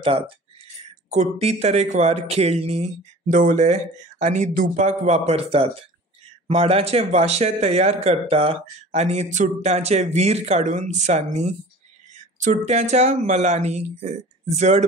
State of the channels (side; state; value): both; normal; correlation 0.42